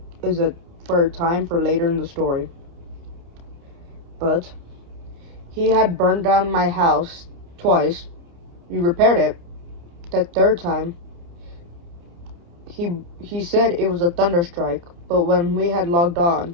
a time for later in the story. But he had burned down my house twice. We repaired it. That third time, he said it was a thunderstrike. But when we had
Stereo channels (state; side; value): late; left; 29 ms